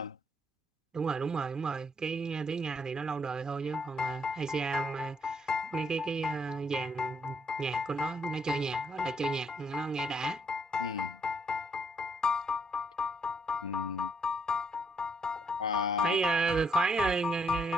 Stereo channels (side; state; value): both; normal; correlation 0.73